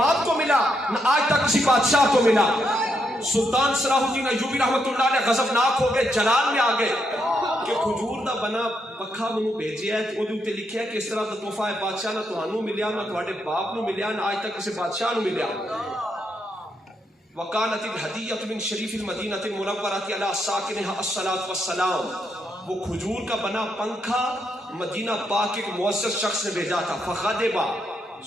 کو ملا، نہ آج تک کسی بادشاہ کو ملا. سلطان صلاح الدین ایوبی رحمۃ اللہ علیہ غضبناک ہو گئے، جلال میں آ گئے کہ کھجور دا بنا پکھا منو بھیجیا ہے، وہ تے لکھیا ہے کہ اس طرح دا تحفہ ہے بادشاہ نہ تانوں ملیا، نہ تواڈے باپ نو ملیا، نہ آج تک کسی بادشاہ نو ملیا. وکانت الہدیۃ من شریف المدینہ المنورۃ علی ساکنہا الصلاۃ والسلام. وہ کھجور کا بنا پنکھا مدینہ پاک کے ایک معزز شخص نے بھیجا تھا. فغضب،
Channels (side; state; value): both; normal; correlation 0.79